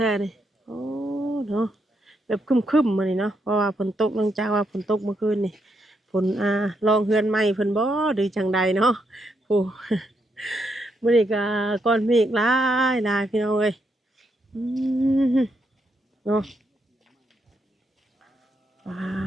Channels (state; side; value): normal; both; correlation 0.79